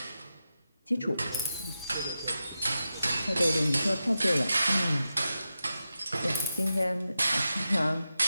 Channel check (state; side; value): inverted; both; correlation -0.90